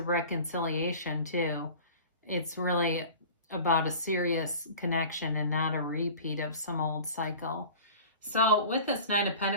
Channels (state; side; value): inverted; both; correlation -0.40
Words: reconciliation too, it's really about a serious connection and not a repeat of some old cycle. So with this Nine of